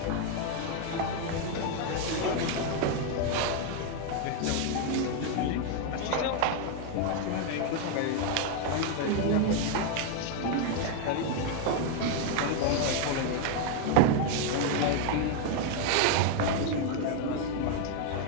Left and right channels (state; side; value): different; both; correlation 0.01